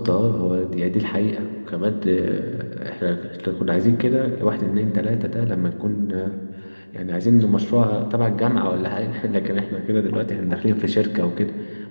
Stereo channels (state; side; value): inverted; both; correlation -1.00